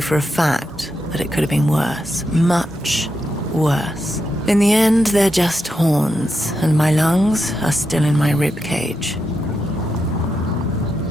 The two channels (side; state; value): both; normal; correlation 0.85